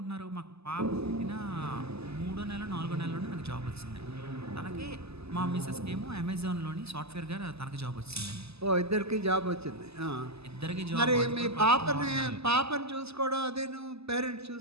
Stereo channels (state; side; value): late; left; 0.79 ms